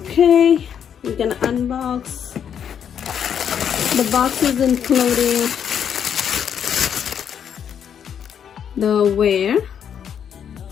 we can unbox. The box is including the wear,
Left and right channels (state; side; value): quieter; right; 8.3 dB